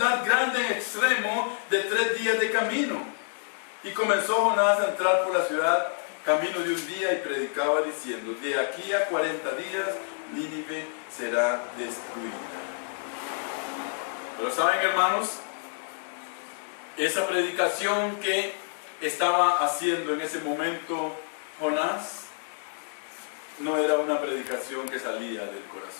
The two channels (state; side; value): silent; right; digital silence